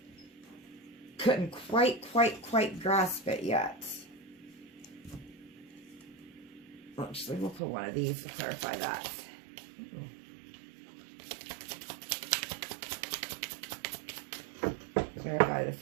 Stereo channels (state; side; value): drops out; left; at 7.6 s